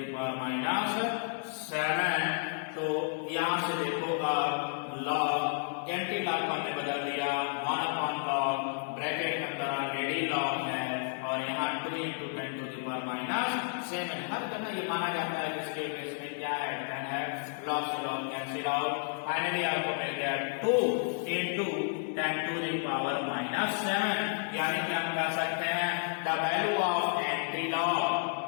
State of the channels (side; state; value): right; silent; 57 dB below the other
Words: power -7। तो यहां से देखो अब log एंटी लॉग को हमने बदल दिया 1 upon log, ब्रैकेट के अंदर ऑलरेडी log है और यहाँ 2 into 10 to the power -7। हर जगह ये माना जाता है इसके केस में क्या है, 10 है, log से log कैंसिल आउट, फाइनली आपको मिल गया 2 into 10 to the power -7। यानी कि हम कह सकते हैं the value of anti log,